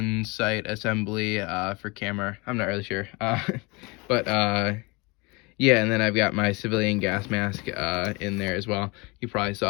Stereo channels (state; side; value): quieter; right; 26.8 dB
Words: sight assembly, for camera. I'm not really sure. But, Yeah, and then I've got my civilian gas mask in there as well. You probably